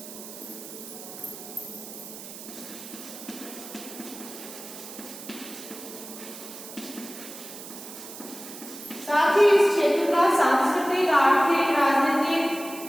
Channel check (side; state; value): right; noise; hiss, 13 dB below the sound